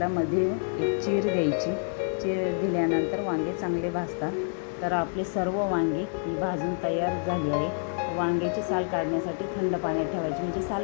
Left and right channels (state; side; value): silent; right; digital silence